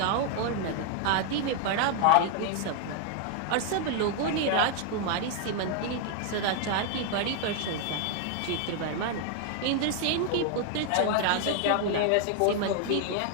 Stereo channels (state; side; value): different; both; correlation 0.00